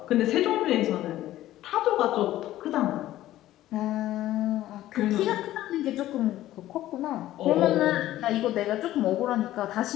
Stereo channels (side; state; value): right; quieter; 14.3 dB